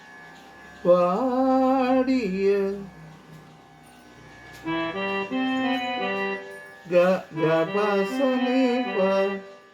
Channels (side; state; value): both; identical; correlation 1.00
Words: വാടിയ ഗ ഗ പ സ നി പ